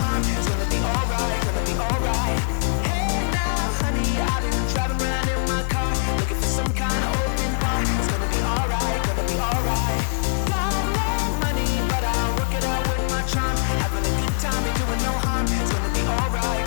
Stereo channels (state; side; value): silent; right; digital silence